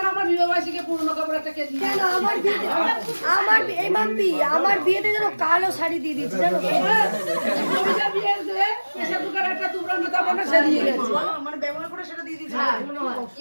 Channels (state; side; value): inverted; both; correlation -1.00